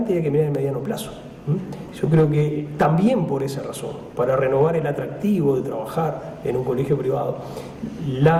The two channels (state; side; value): identical; both; correlation 1.00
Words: y hay que mirar en mediano plazo. Yo creo que también por esa razón, para renovar el atractivo de trabajar en un colegio privado,